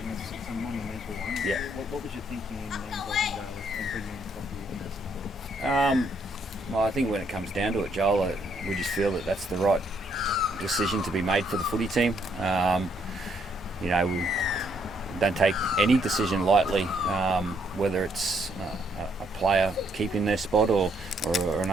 is a monumental one. Yeah. What was your thinking in involving Daly and bringing in Tom Dearden? Well, I think when it comes down to it, Joel, we just feel that that's the right decision to be made for the footy team. We don't take any decision lightly, whether it's a player keeping their spot or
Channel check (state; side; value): normal; both; correlation 0.71